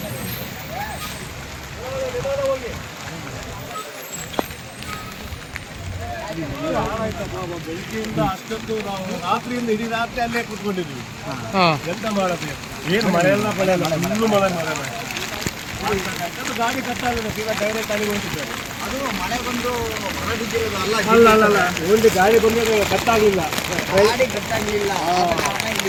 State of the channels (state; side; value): identical; both; correlation 1.00